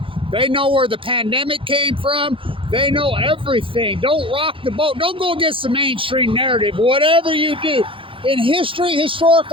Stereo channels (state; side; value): late; left; 0.25 ms